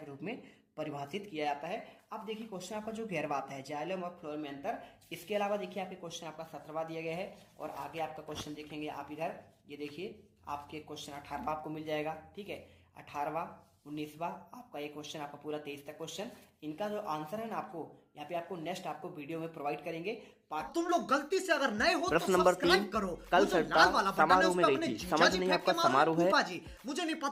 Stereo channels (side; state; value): both; identical; correlation 1.00